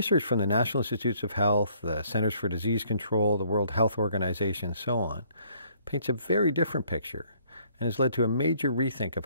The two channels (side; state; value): both; inverted; correlation -0.63